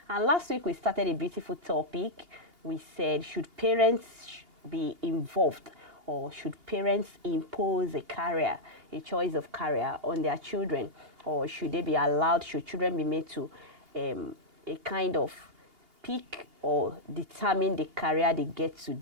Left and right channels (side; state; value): left; late; 2.8 ms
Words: And last week we started a beautiful topic. We said, should parents be involved, or should parents impose a career, a choice of career on their children, or should they be allowed, should children be made to a kind of pick or determine the career they get to